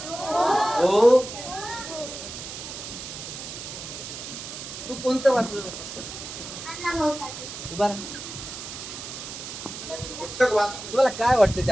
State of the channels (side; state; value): right; noise; hiss, 9 dB below the sound